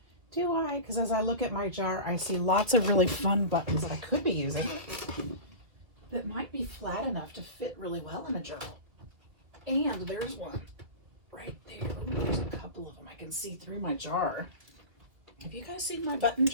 Do I? Because as I look at my jar, I see lots of really fun buttons that I could be using that might be flat enough to fit really well in a journal. And there's one right there. Ooh, there's a couple of them. I can see through my jar. Have you guys seen my button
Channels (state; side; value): late; left; 2.3 ms